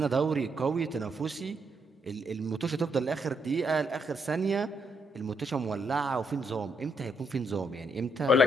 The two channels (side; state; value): both; normal; correlation 0.75